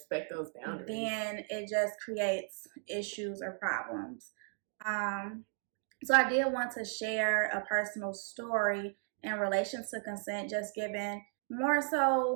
those boundaries, then it just creates issues or problems. So I did want to share a personal story in relation to consent, just given more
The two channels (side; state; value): left; silent; 54 dB below the other